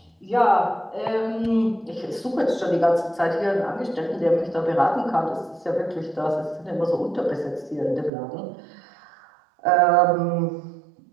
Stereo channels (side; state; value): left; drops out; at 8.1 s